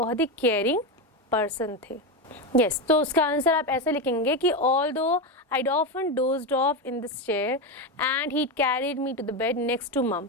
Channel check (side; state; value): both; normal; correlation 0.13